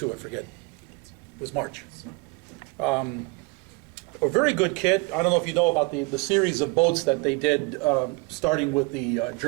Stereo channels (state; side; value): quieter; left; 27.7 dB